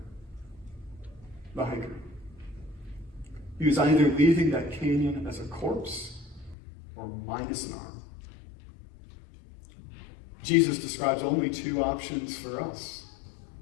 the hiker. He was either leaving that canyon as a corpse or minus an arm. Jesus describes only two options for us.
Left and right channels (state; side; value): drops out; right; at 6.6 s